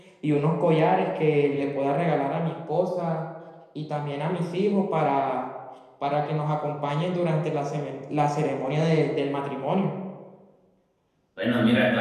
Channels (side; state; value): both; identical; correlation 1.00